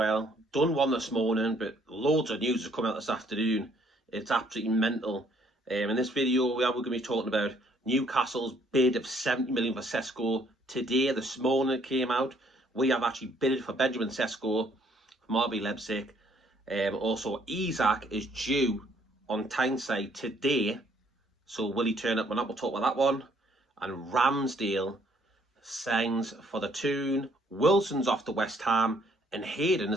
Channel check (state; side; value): normal; both; correlation 0.64